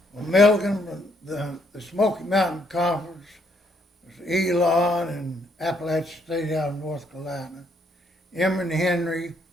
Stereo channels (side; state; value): both; normal; correlation 0.71